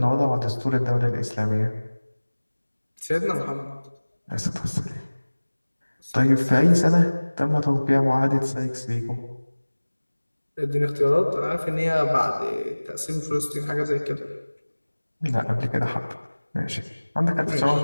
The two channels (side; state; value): both; inverted; correlation -1.00